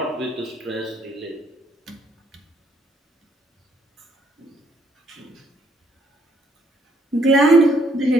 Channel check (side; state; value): both; normal; correlation 0.68